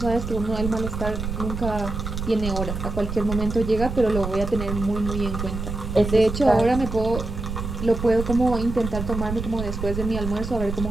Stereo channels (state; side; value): noise; right; rumble, 5 dB below the sound